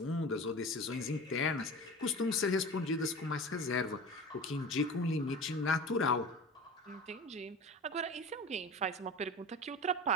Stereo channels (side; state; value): both; normal; correlation 0.33